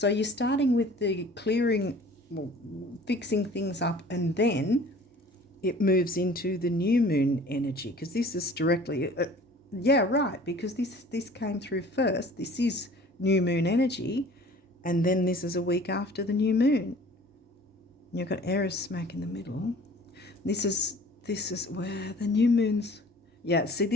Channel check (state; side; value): normal; both; correlation 0.47